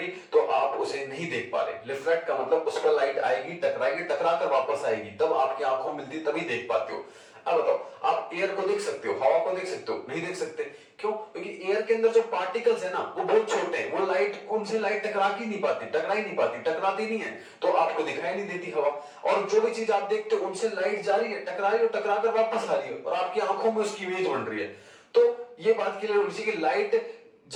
तो आप उसे नहीं देख पा रहे। रिफ्लेक्ट का मतलब उस पर लाइट आएगी, टकराएगी, टकरा कर वापस आएगी, तब आपकी आंखों मिलती, तभी देख पाते हो। अब बताओ, आप एयर को देख सकते हो, हवा को देख सकते हो? नहीं देख सकते। क्यों? क्योंकि एयर के अंदर जो पार्टिकल्स है ना, वो बहुत छोटे हैं, वो लाइट, उनसे लाइट टकरा ही नहीं पाती, टकराती नहीं है, तो आपको दिखाई नहीं देती हवा। और जो भी चीज आप देखते हो उनसे लाइट जा रही है, टकरा रही है, टकरा कर वापस आ रही है, और आपकी आंखों में उसकी इमेज बन रही है। तो ये बात क्लियर होनी चाहिए कि लाइट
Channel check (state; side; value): identical; both; correlation 1.00